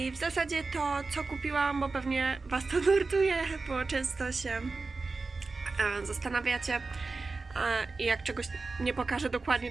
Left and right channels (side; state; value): left; quieter; 3.9 dB